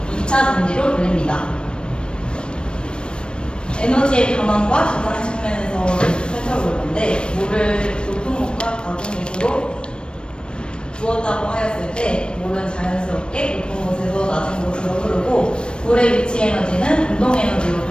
2차 전지로 불립니다. 에너지의 변환과 저장 측면에서 살펴볼 건데, 물을 높은 곳과 낮은 곳으로 두었다고 하였을 때 물은 자연스럽게 높은 곳에서 낮은 곳으로 흐르고, 물의 위치 에너지는 운동 에너지로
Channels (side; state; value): right; late; 0.055 ms